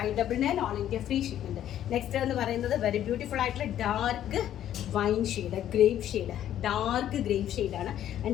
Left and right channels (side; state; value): right; quieter; 11.3 dB